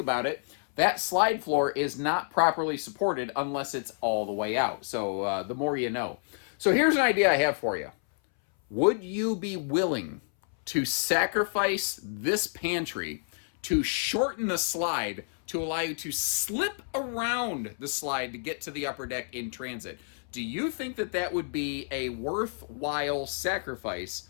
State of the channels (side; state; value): right; silent; 58 dB below the other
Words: it, that slide floor is not properly supported unless it's all the way out. So the more you know. So here's an idea I have for you. Would you be willing to sacrifice this pantry to shorten the slide to allow you to slip around the slide to get to the upper deck in transit? Do you think that that would be a worthwhile sacrifice?